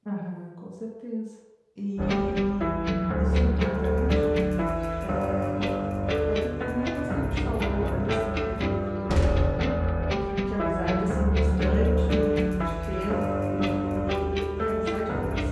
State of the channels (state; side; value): identical; both; correlation 1.00